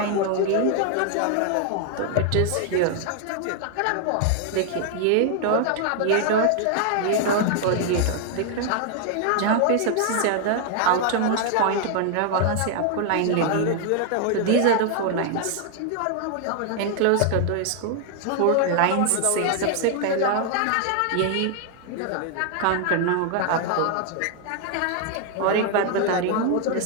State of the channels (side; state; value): both; different; correlation 0.00